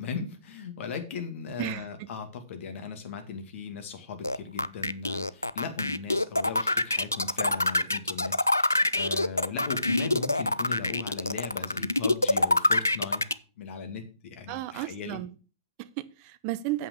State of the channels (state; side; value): inverted; both; correlation -0.77